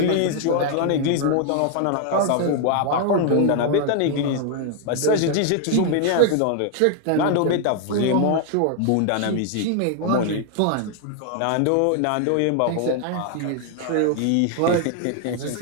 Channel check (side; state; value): both; different; correlation 0.00